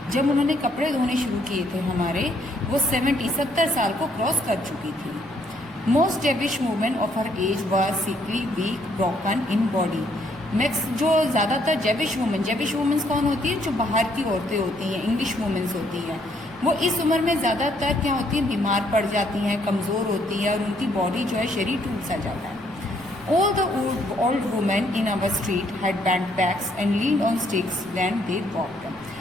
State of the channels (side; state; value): right; noise; rumble, 27 dB below the sound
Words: जब उन्होंने कपड़े धोने शुरू किए थे हमारे, वो 70 साल को क्रॉस कर चुकी थी. Most Jewish women of her age were sickly, weak, broken in body. Max जो ज़्यादातर जेविश वुमेन्स कौन होती है? जो बाहर की औरतें होती हैं, इंग्लिश वुमेन्स होती हैं. वो इस उम्र में ज़्यादातर क्या होती हैं? बीमार पड़ जाती हैं, कमज़ोर होती हैं और उनकी बॉडी जो है शरीर टूट सा जाता है. All the old women in our street had bent backs and leaned on sticks when they walked.